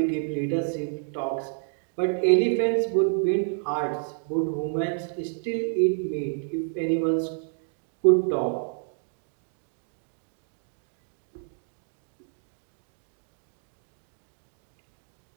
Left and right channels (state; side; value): silent; left; digital silence